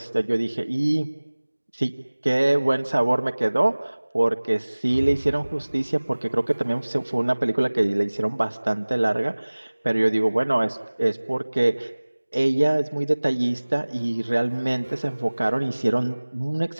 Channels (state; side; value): inverted; both; correlation -1.00